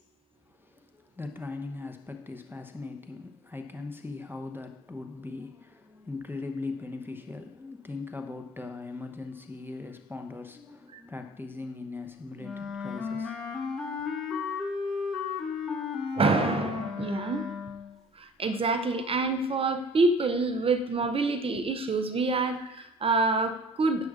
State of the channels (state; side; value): normal; both; correlation 0.48